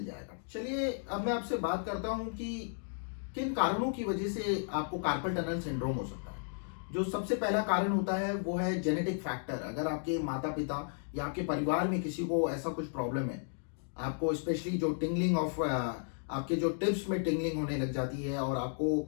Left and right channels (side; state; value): right; silent; digital silence